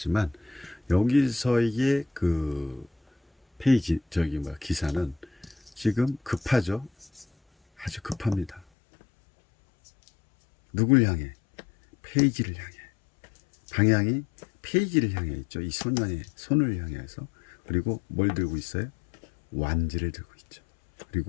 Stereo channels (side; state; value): right; drops out; at 8.7 s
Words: 여기서의 그 페이지 기사는 지금 급하죠. 아주 급합니다. 누굴 향해? 페이지를 향해. 방향이 페이지를 향해 있죠. 이 소년의 손을 향해서. 그리고 뭘 들고 있어요? 완지를 들고 있죠.